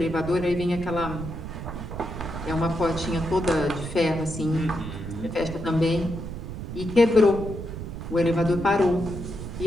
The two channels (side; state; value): right; noise; rumble, 8 dB below the sound